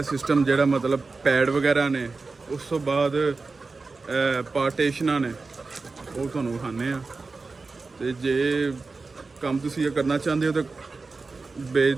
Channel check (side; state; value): left; quieter; 4.0 dB